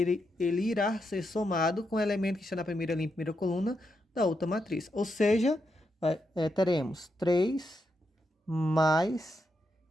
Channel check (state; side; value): normal; both; correlation 0.83